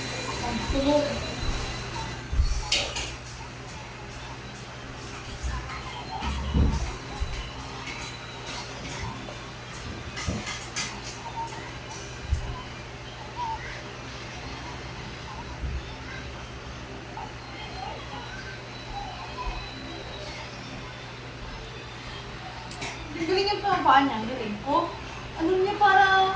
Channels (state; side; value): identical; both; correlation 1.00